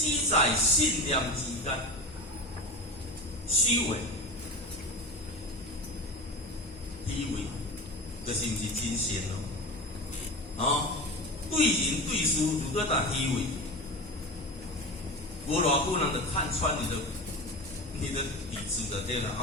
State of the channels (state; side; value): normal; both; correlation 0.28